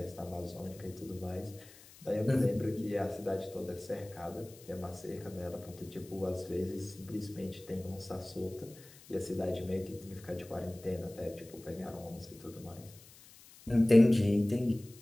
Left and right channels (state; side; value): noise; left; hiss, 21 dB below the sound